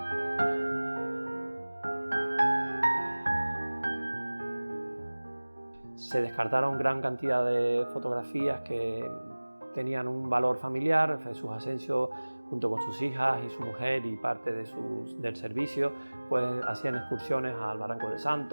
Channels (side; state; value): both; inverted; correlation -1.00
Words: Se descartaron gran cantidad de fotografías que tenían un valor familiar. Jesús Asensio, junto con sus hijas y su mujer y parte del servicio, pues hacían excursiones al Barranco de